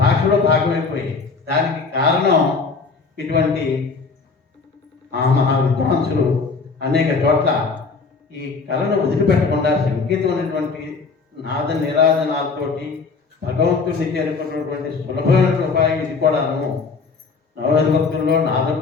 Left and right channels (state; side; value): quieter; right; 4.6 dB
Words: భాషలో భాగమైపోయాయి. దానికి కారణం ఇటువంటి మహా విద్వాంసులు అనేక చోట్ల ఈ కళను వదిలిపెట్టకుండా సంగీతం అనేటువంటి నాద నిరాధనాలతోటి భగవంతుడిని చేరుకున్నటువంటి సులభమైన ఉపాయం ఇది కూడాను. నవభక్తుల్లో నాదం